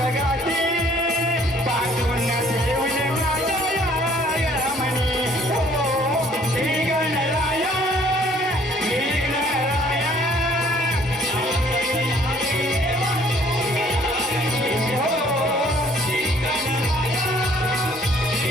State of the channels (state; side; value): normal; both; correlation 0.59